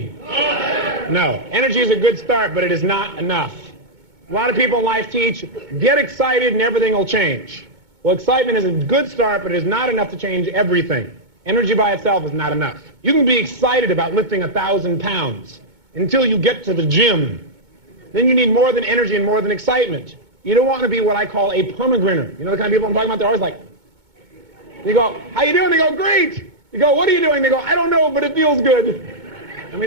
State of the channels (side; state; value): left; late; 2.2 ms